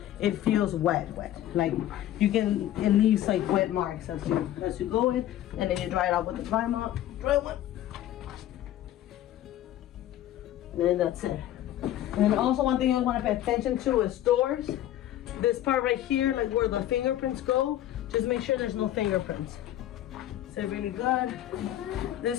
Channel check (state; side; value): quieter; right; 12.7 dB